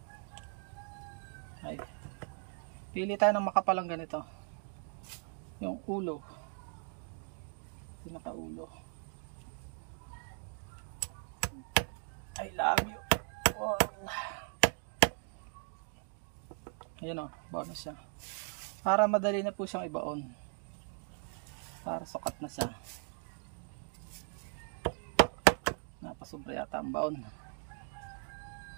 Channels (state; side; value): silent; left; 53 dB below the other